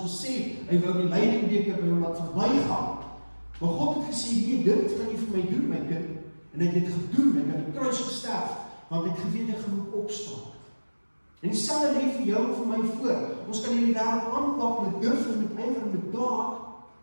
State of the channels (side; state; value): both; inverted; correlation -1.00